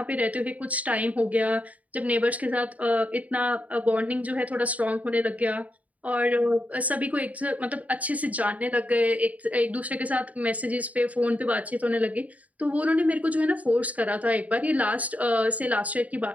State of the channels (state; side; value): late; left; 0.071 ms